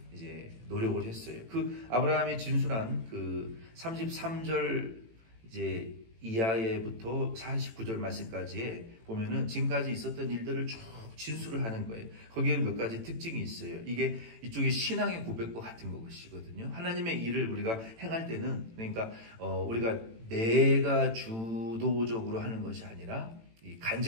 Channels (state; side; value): late; left; 18 ms